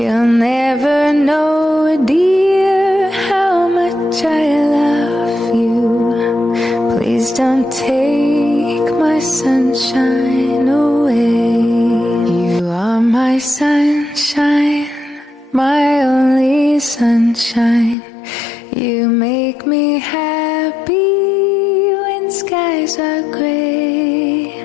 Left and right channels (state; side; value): drops out; right; at 17.9 s